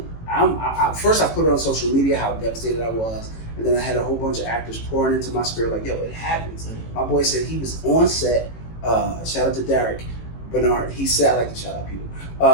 first I put it on social media how devastated I was, and then I had a whole bunch of actors pouring into my spirit like, yo, it happens. My boy said he was on set. Shout out to Derek Bernard. He said, I like to shout out people.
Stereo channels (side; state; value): right; late; 18 ms